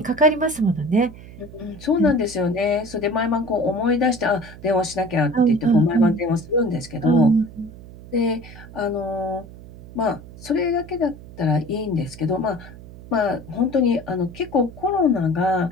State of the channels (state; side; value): noise; right; hum, 17 dB below the sound